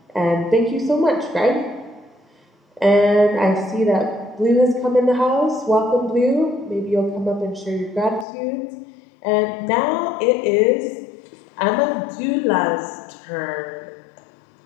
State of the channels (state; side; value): drops out; right; at 8.2 s